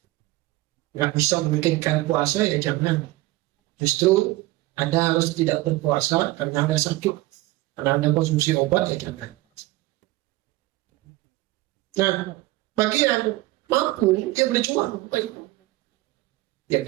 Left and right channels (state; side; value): quieter; left; 18.6 dB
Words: nggak bisa memikirkan puasa, ya jangan. Justru Anda harus tidak berpuasa karena Anda sakit, karena Anda konsumsi obat, ya jangan. Nah, bagi yang mampu, dia berjuang. Ya